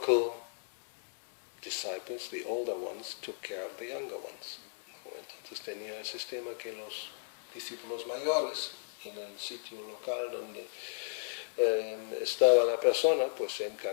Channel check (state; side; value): silent; right; digital silence